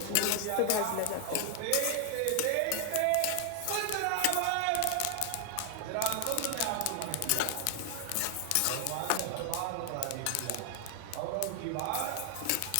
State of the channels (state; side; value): different; both; correlation 0.00